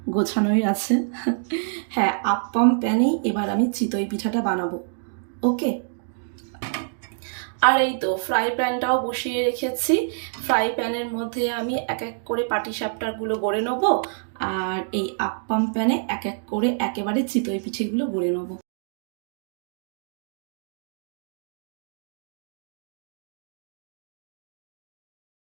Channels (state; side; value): silent; left; digital silence